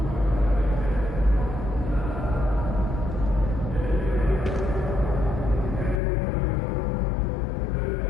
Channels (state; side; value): drops out; right; at 6.0 s